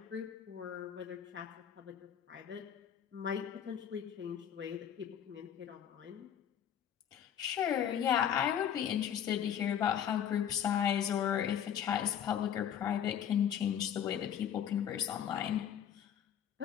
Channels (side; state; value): right; quieter; 9.2 dB